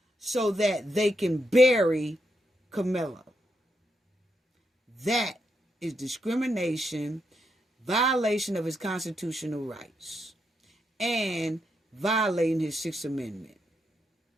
so that they can bury Karmelo. That is discrimination, violation of his constitutional rights, and violating his Sixth Amendment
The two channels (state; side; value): normal; both; correlation 0.81